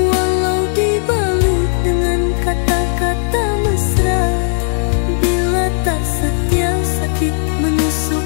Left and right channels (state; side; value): silent; right; digital silence